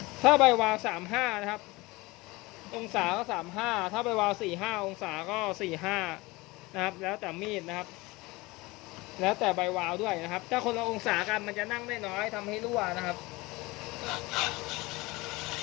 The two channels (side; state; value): right; quieter; 22.2 dB